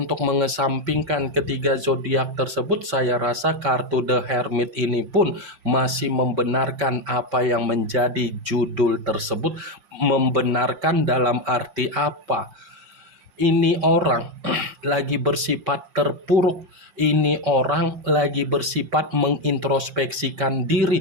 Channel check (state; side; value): late; left; 5.7 ms